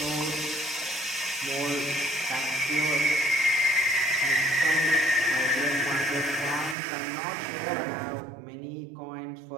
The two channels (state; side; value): drops out; left; at 6.8 s